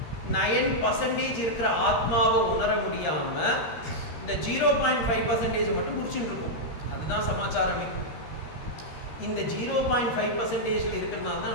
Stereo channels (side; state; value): right; late; 13 ms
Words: இருக்கிற ஆத்மாவை உணர முடியாமல் இந்த 0.5% மட்டும் முடிச்சுட்டு இருக்கும். அதுதான் சமாச்சாரமே. இந்த 0.5% இருக்கிறதுனால தான்